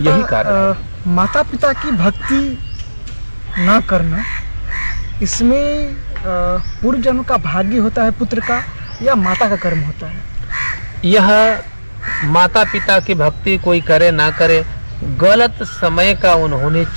कारण है। माता पिता की भक्ति ना करना, इसमें पूर्व जन्म का भाग्य होता है पुत्र का या माता का कर्म होता है? यह माता पिता की भक्ति कोई करे ना करे, गलत समय का उन्होंने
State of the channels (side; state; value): both; inverted; correlation -1.00